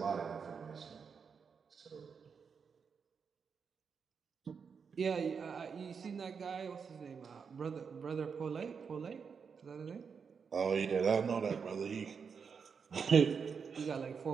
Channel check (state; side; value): quieter; left; 6.1 dB